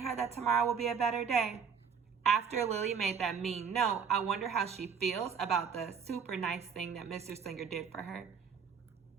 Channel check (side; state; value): left; quieter; 6.5 dB